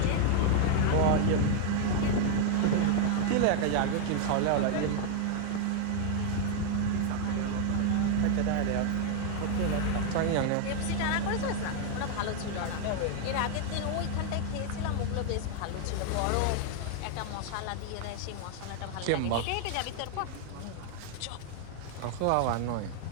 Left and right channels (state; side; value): different; both; correlation 0.00